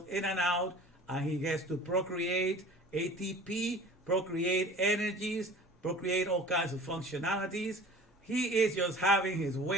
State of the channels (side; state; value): both; normal; correlation 0.43